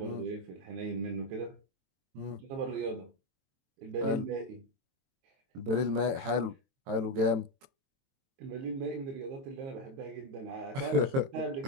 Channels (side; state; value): left; late; 22 ms